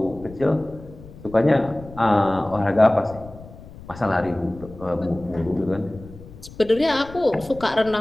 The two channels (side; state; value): left; noise; rumble, 17 dB below the sound